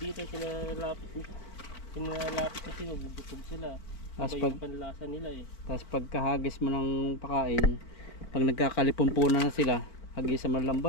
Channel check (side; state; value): right; late; 4.5 ms